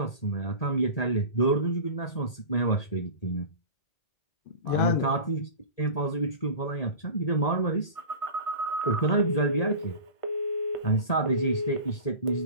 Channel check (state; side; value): late; right; 1.8 ms